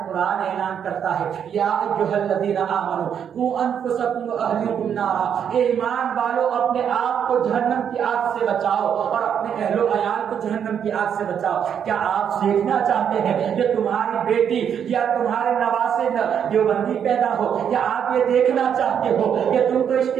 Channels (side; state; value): left; quieter; 8.3 dB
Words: قرآن اعلان کرتا ہے یا ایھا الذین آمنوا قوا انفسکم واہلیکم نارا، اے ایمان والو اپنے آپ کو جہنم کی آگ سے بچاؤ اور اپنے اہل و عیال کو جہنم کی آگ سے بچاؤ۔ کیا آپ سیکھنا چاہتے ہیں کہ تمہاری بیٹی یا تمہارے نواسے دیوبندی پیدا ہو؟ یا آپ یہ دیکھنا چاہتے ہو کہ تم تو عشق